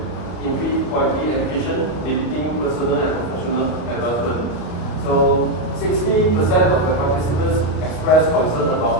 impede quality education, limiting personal and professional advancement. So 60% of the participants expressed concern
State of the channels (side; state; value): right; late; 33 ms